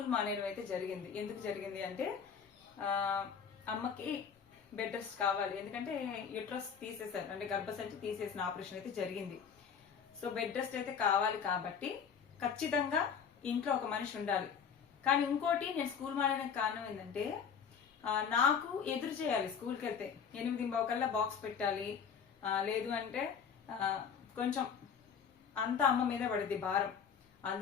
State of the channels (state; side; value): quieter; right; 6.9 dB